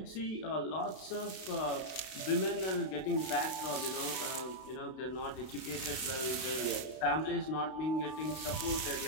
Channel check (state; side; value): late; right; 31 ms